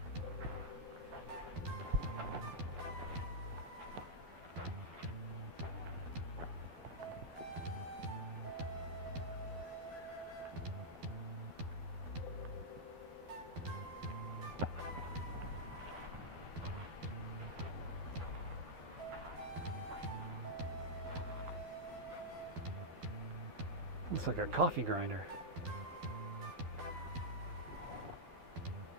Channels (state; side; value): late; left; 12 ms